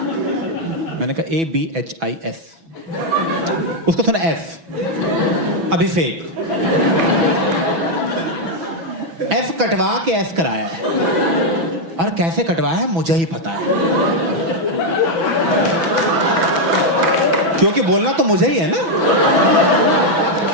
मैंने कहा ABHIS, उसको सुना F, अभिषेक। F कटवा के S कराया है, और कैसे कटवाया है मुझे ही पता है, क्योंकि बोलना तो मुझे ही है ना।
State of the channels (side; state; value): left; late; 6.1 ms